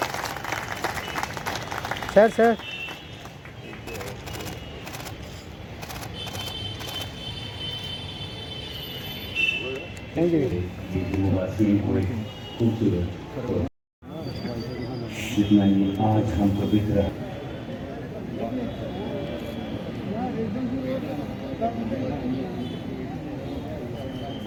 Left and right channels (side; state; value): both; identical; correlation 1.00